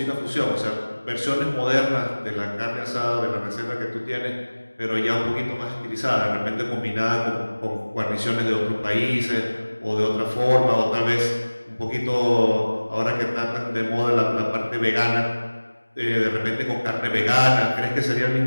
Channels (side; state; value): both; inverted; correlation -1.00